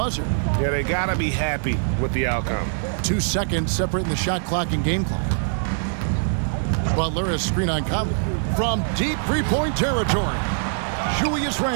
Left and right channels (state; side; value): silent; left; digital silence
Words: Yeah, they got to be happy with the outcome. 2 seconds separating the shot clock and game clock. Butler has screen on Conley. From deep three-point territory, Julius